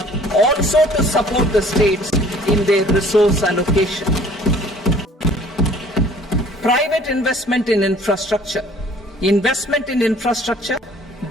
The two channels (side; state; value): both; normal; correlation 0.53